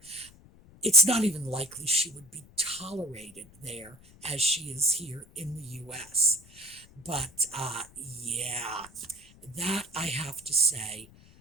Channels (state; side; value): noise; left; rumble, 24 dB below the sound